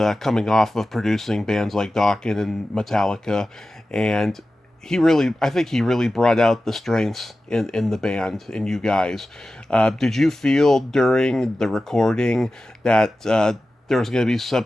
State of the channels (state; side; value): normal; both; correlation 0.94